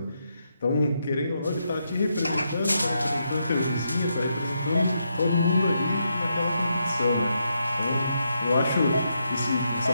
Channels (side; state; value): both; inverted; correlation -0.81